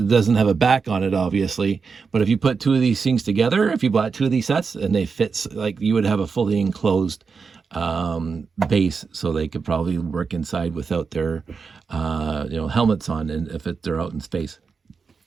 doesn't have a back on it, obviously, but if you put two of these things together, if you bought two of these sets and they fit, like, you would have a fully enclosed base, so they could probably work inside without their helmets on, and if they're out in space.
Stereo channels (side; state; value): left; quieter; 5.3 dB